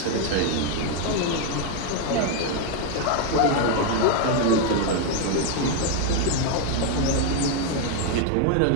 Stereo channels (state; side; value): different; both; correlation 0.01